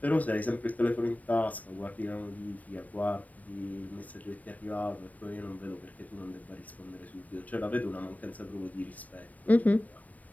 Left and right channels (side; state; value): right; late; 0.073 ms